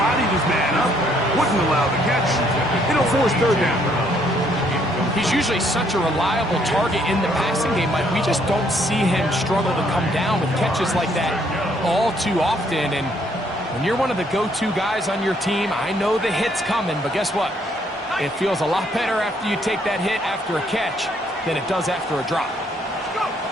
his man up. Wouldn't allow the catch. It'll force third down. He's usually such a reliable target in the passing game, Mike. We just don't see him struggle to come down with catches like that all too often. And when you're one of the go-to guys on your team, I know the hit's coming, but guess what? It feels a lot better after you take that hit after a catch than it does after a drop.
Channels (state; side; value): normal; both; correlation 0.68